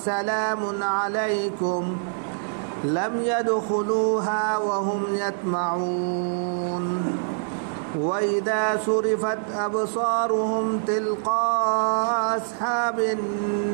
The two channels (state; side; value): silent; left; 62 dB below the other